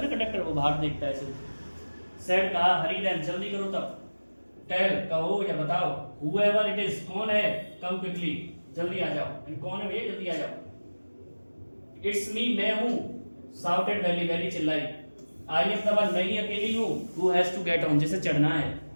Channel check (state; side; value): inverted; both; correlation -1.00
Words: ना कंडक्टर, वो बाहर देखता है ऐसे। सेड कहा हरी देन जल्दी करो तब, टेल कहो या बताओ, whoever it is कौन है, कम क्विकली जल्दी आ जाओ, कौन है भैया जल्दी आ जाओ। इट्स मी मैं हूं, शाउटेड वैली वैली चिल्लाई, आई एम द वन मैं ही अकेली हूं, who has to get on जिसे चढ़ना है।